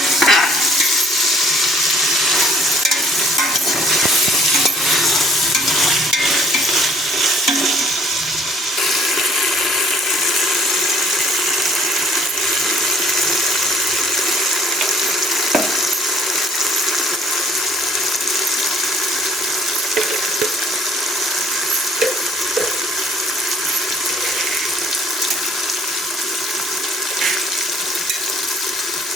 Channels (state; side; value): normal; both; correlation 0.58